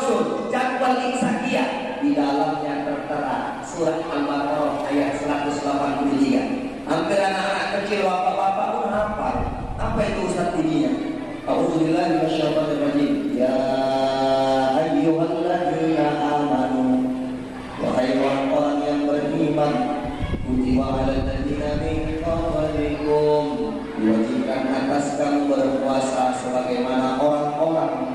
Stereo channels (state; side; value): identical; both; correlation 1.00